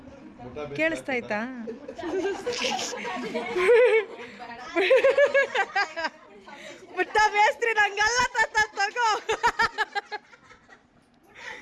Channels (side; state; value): both; identical; correlation 1.00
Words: ಕೇಳಿಸ್ತಾಯ್ತಾ? ಮುಟ್ಟ ಬೇಸ್ತ್ರಿ ನಂಗಲ್ಲ ತಗೋ.